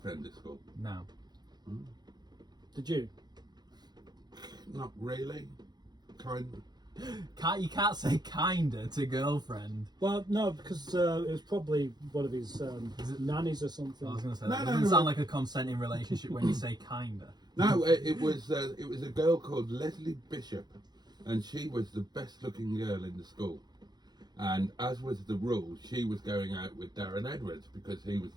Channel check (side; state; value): left; late; 0.20 ms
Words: at school? No. Did you? Not really. Kind. You can't say kinda to girlfriend. Well, no, because it was probably one of his nannies or something. I was going to say No, that no, doesn't no. sound like a consenting relationship when you say kinda. No, it was a girl called Leslie Bishop, and she was the best looking girl in the school. And as was the rule, she was going out with Darren Edwards because he was